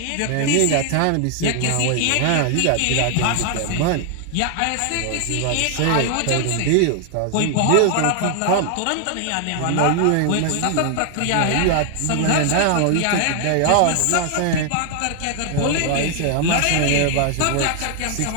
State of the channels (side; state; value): both; different; correlation 0.00